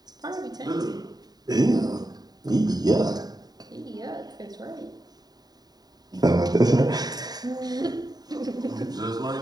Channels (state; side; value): late; left; 0.19 ms